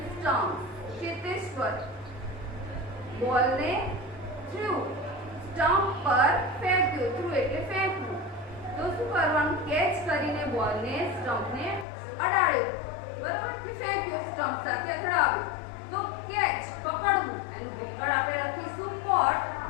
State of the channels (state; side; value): drops out; right; at 11.9 s